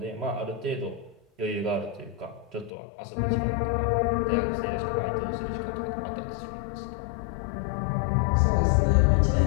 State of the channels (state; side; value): drops out; right; at 2.7 s